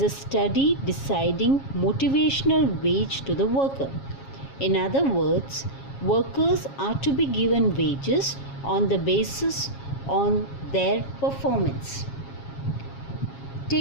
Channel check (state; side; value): late; right; 7.3 ms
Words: a study deciding motivational wage to the worker. In other words, workers are to be given wages on the basis on their performance.